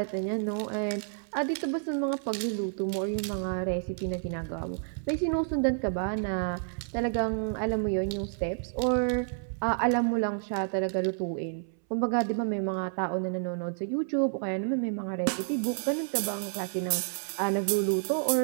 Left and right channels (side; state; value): left; silent; 58 dB below the other